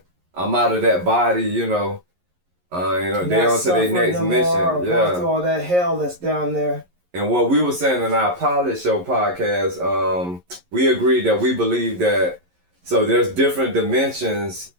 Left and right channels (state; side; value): late; left; 11 ms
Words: I'm out of that body. You know. They on to their next mission. Going through all that hell that's down there. And what we were saying in our pilot show podcast, we agreed that we believe that, so there's different dimensions